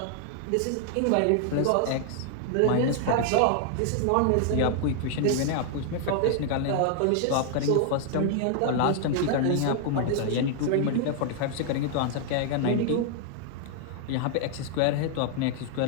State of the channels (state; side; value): different; both; correlation 0.00